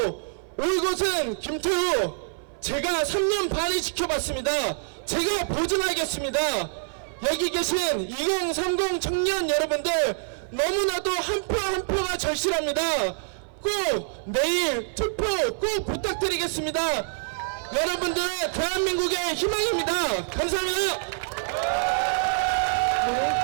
올곧은 김태우, 제가 3년 반을 지켜봤습니다. 제가 보증하겠습니다. 여기 계신 2030 청년 여러분들, 너무나도 한 표 한 표가 절실합니다. 꼭 내일 투표 꼭 부탁드리겠습니다. 여러분들은 대한민국의 희망입니다. 감사합니다.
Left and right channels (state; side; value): silent; left; 57 dB below the other